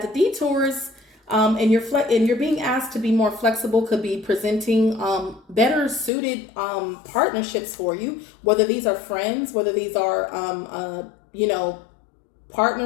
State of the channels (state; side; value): drops out; right; at 6.1 s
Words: the detours and you're being asked to be more flexible could be presenting better suited partnerships for you, whether these are friends, whether these are